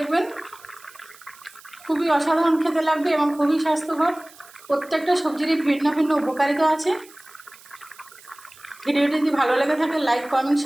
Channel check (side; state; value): right; noise; hiss, 23 dB below the sound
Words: খুবই অসাধারণ খেতে লাগবে এবং খুবই স্বাস্থ্যকর। প্রত্যেকটা সবজিরই ভিন্ন ভিন্ন উপকারিতা আছে। ভিডিওটি যদি ভালো লেগে থাকে লাইক, কমেন্ট,